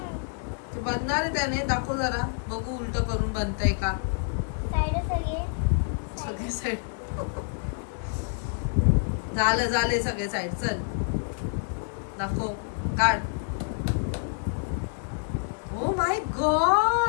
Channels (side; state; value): right; silent; digital silence